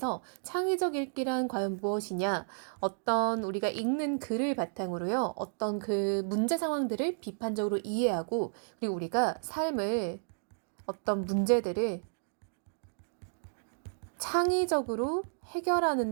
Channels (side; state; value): left; silent; digital silence